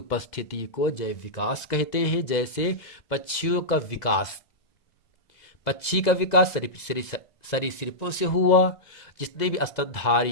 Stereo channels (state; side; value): late; right; 2.0 ms